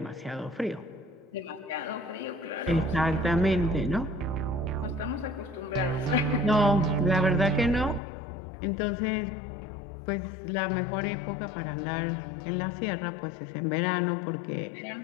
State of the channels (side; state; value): right; drops out; at 8.0 s